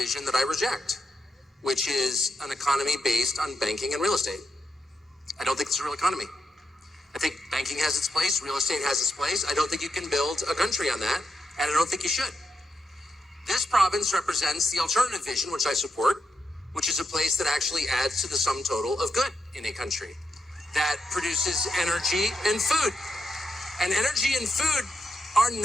that I reject, which is an economy based on banking and real estate. I don't think it's a real economy. I think banking has its place, real estate has its place. I don't think you can build a country on that, and I don't think you should. This province represents the alternative vision, which I support, which is a place that actually adds to the sum total of good in a country, that produces energy and food. And energy and food are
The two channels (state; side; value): normal; both; correlation 0.84